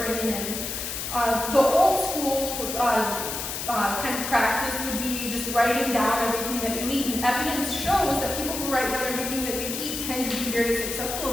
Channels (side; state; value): left; noise; hiss, 5 dB below the sound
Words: in? The old school kind of practice would be just writing down everything that you eat, and evidence shows that people who write down everything that they eat tend to be very successful